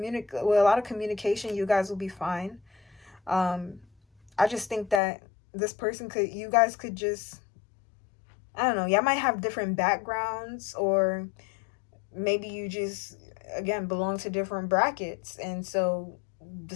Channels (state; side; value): drops out; right; at 5.0 s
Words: lot of communication, you guys will be fine. I just think that this person you guys could just, I don't know, y'all might have different backgrounds, or maybe you just, again, belong to different brackets, and so the